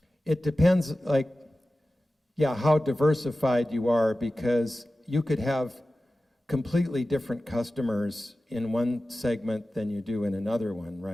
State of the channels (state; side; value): normal; both; correlation 0.95